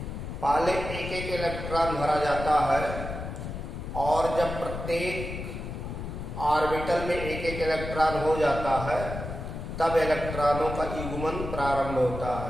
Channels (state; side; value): noise; left; rumble, 7 dB below the sound